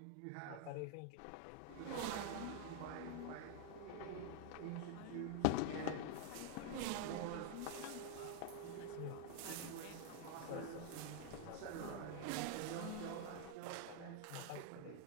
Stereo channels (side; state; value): both; different; correlation 0.00